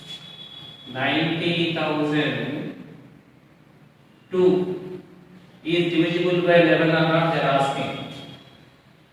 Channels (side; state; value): both; identical; correlation 1.00